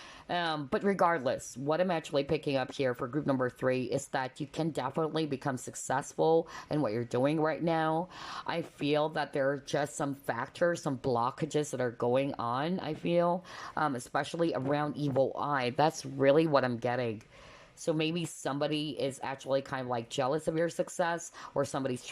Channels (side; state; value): both; identical; correlation 1.00